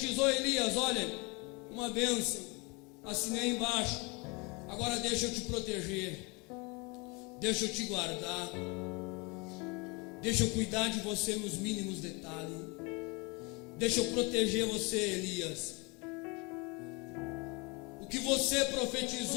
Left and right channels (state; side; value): quieter; right; 28.6 dB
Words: Elias: olha, uma bênção, assinei embaixo, agora deixa eu te proteger, deixa eu te guardar, deixa eu cuidar de você nos mínimos detalhes, deixa eu proteger você, Elias. O que você